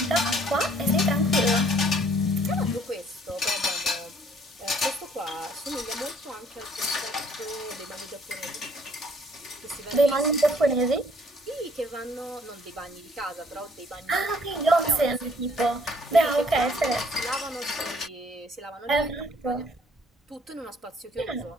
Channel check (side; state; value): both; normal; correlation 0.61